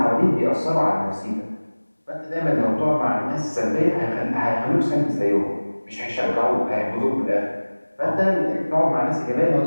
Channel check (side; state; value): both; inverted; correlation -1.00